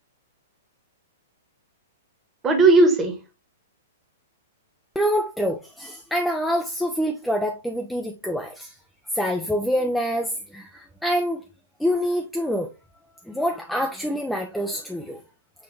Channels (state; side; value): normal; both; correlation 0.60